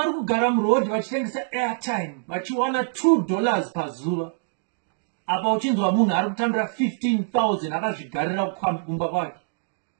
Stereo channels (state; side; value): silent; left; 62 dB below the other